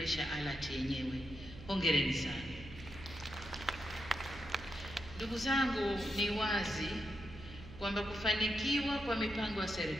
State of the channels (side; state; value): right; noise; hum, 14 dB below the sound